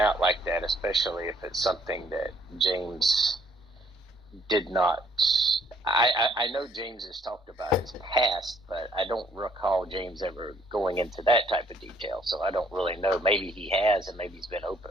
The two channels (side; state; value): both; normal; correlation 0.65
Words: like that, especially if it's something that James did not. I know James has talked about his past, but I don't recall James ever going into that type of detail, so I don't really know. Maybe he has, and maybe he's been open